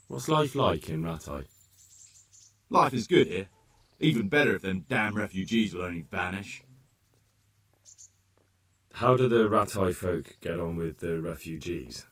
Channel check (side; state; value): both; identical; correlation 1.00